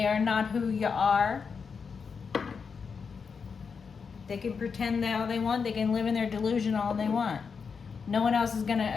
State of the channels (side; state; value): right; quieter; 5.7 dB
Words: are not who you are. They can pretend all they want. They can live in their delusion all they want. No one else is going